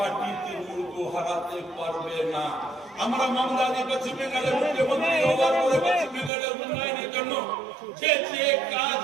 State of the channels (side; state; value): left; drops out; at 6.3 s